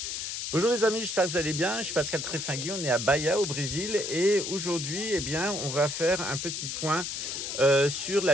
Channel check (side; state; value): left; noise; hiss, 4 dB below the sound